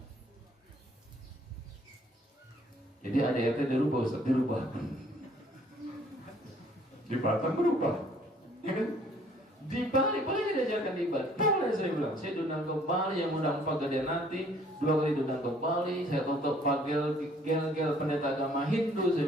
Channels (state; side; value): normal; both; correlation 0.59